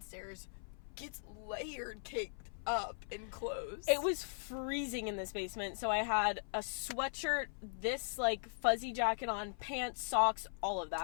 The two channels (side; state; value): right; silent; 52 dB below the other